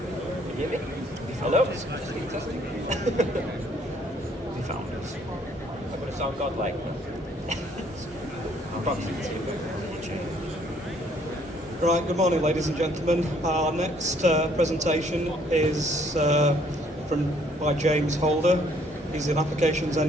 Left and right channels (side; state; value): both; normal; correlation 0.64